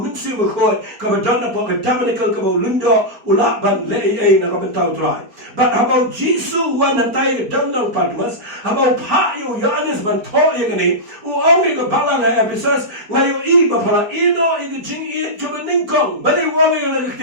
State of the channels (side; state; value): left; late; 4.5 ms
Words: mimsi bekoi ke badana po ke tabernacle ke bau lindo ulak ban lei na ka bentau try but habau jisu wan hantai ke dandang padmas habau pa yo yanis ban to ye gani u ongi ke balang ha episas ngayo i ba pala ino i ke jing i to beningkong bali wawi yo la